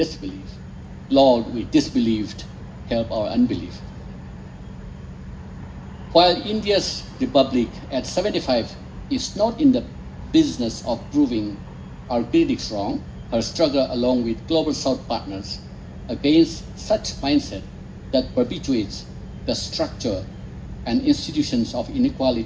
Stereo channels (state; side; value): identical; both; correlation 1.00